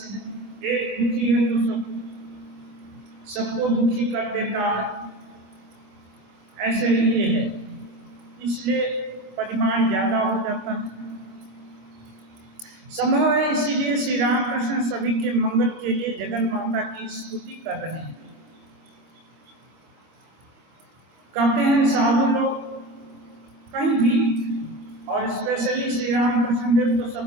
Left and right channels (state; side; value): late; left; 26 ms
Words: हैं, एक दुखी है तो सबको दुखी कर देता है, ऐसे ही ये है। इसलिए परिमाण ज्यादा हो जाता है। संभव है इसीलिए श्री रामकृष्ण सभी के मंगल के लिए जगन माता की स्तुति कर रहे हैं। कहते हैं साधु लोग कहीं भी, और स्पेशली श्री रामकृष्ण देव तो